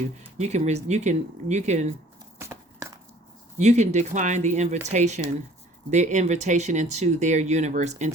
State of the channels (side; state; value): both; normal; correlation 0.54